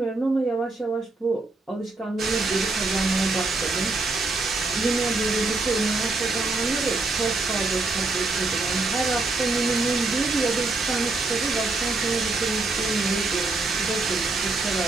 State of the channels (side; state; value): left; quieter; 3.5 dB